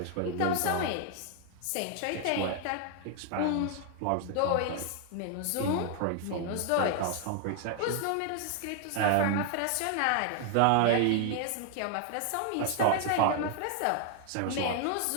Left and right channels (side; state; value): both; different; correlation 0.00